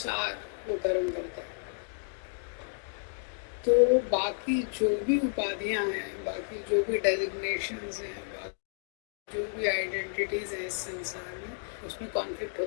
वो कर्म करता है। तो बाकी जो भी उपाधियां हैं, बाकी जो भी डेजिग्नेशंस हैं, जो भी आइडेंटिटीज हैं इस संसार में, उसमें कॉन्फ्लिक्ट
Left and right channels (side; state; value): right; silent; digital silence